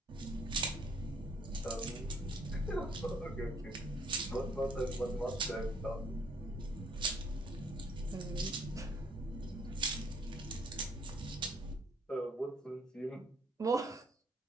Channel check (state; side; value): normal; both; correlation 0.64